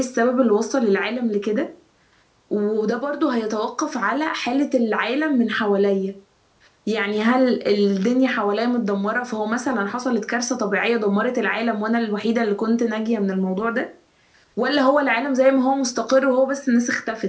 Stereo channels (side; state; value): both; identical; correlation 1.00